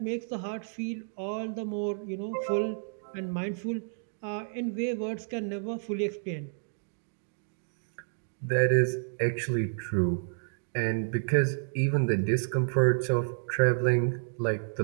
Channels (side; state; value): left; silent; digital silence